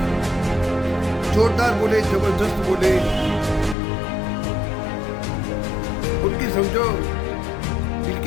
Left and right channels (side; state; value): right; drops out; at 3.8 s